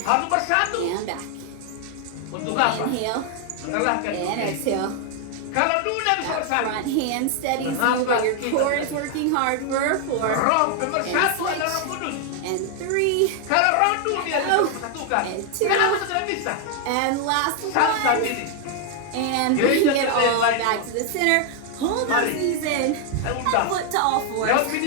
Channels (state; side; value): different; both; correlation 0.00